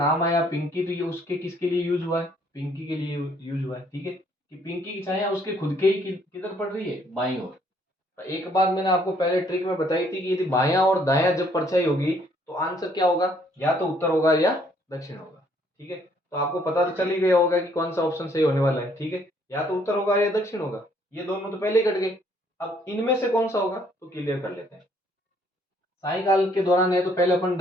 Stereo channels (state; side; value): normal; both; correlation 0.65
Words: आया पिंकी, तो ये उसके किसके लिए यूज हुआ है, पिंकी के लिए यूज हुआ है। ठीक है, कि पिंकी की छाया उसके खुद के ही किधर पड़ रही है, बाईं ओर। तो एक बात मैंने आपको पहले ट्रिक में बताई थी कि यदि बायां और दायां जब परछाई होगी तो आंसर क्या होगा, या तो उत्तर होगा या दक्षिण होगा। ठीक है, तो आपको पता तो चल ही गया होगा कि कौन सा ऑप्शन सही होने वाला है। ठीक है, या तो उत्तर होगा या दक्षिण होगा, ये दोनों तो पहले ही कट गए। अब इनमें से कौन सा होगा तो क्लियर कर लेते हैं। सायकाल के दौरान है तो पहले अपन